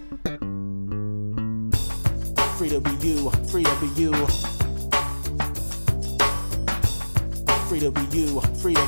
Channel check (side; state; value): both; inverted; correlation -1.00